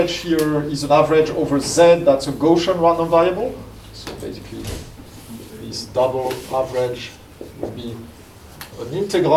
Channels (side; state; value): both; identical; correlation 1.00